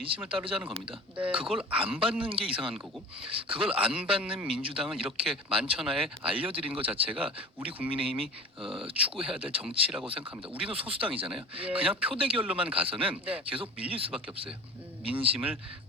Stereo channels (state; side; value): normal; both; correlation 0.38